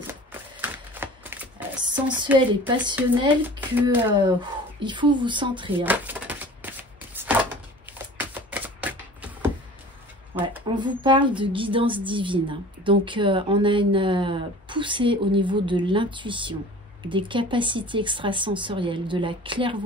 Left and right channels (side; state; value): both; normal; correlation 0.42